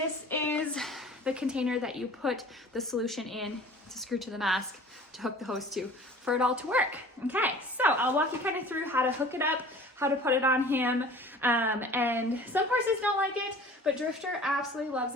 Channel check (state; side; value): normal; both; correlation 0.45